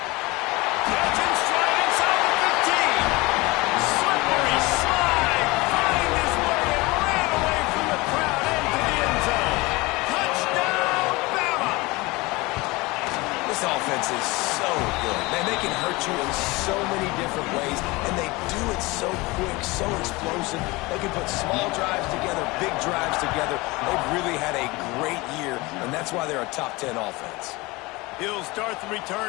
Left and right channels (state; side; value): quieter; right; 23.0 dB